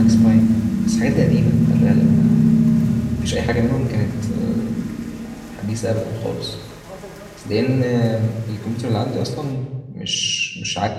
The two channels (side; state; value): both; identical; correlation 1.00